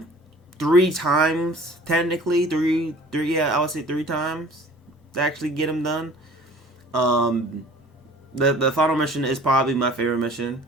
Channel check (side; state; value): both; normal; correlation 0.48